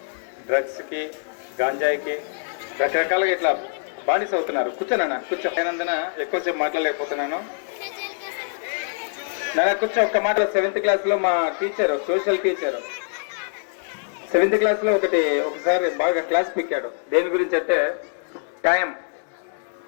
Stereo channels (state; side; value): silent; right; digital silence